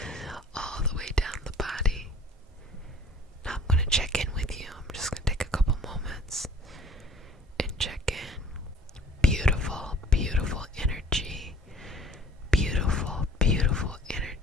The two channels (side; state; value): both; normal; correlation 0.51